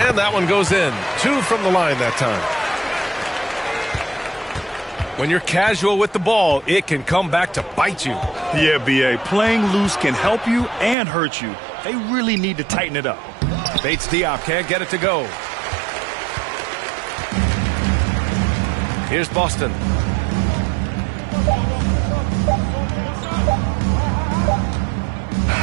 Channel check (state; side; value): drops out; left; at 11.0 s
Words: And that one goes in. Two from the line that time. When you're casual with the ball, it can come back to bite you. Yeah, B.A., playing loose can help you and hurt you. They really need to tighten it up. Bates Diop can't get it to go. Here's Boston.